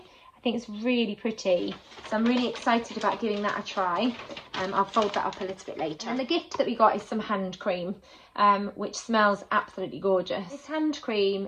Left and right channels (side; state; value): both; identical; correlation 1.00